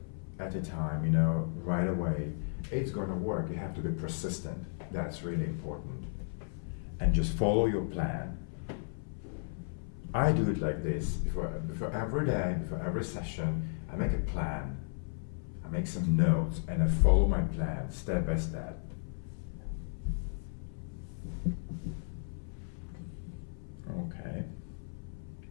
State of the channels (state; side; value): silent; right; 55 dB below the other